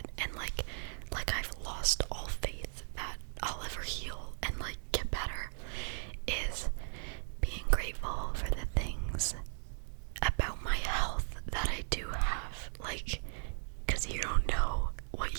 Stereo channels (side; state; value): left; silent; digital silence